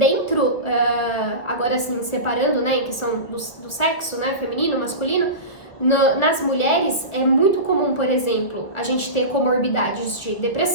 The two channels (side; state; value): right; late; 1.5 ms